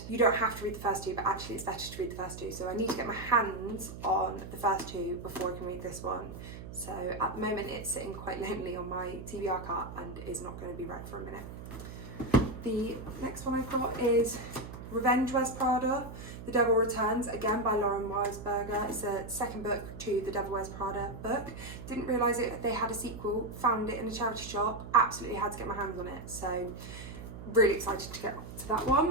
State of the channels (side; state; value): right; noise; hum, 11 dB below the sound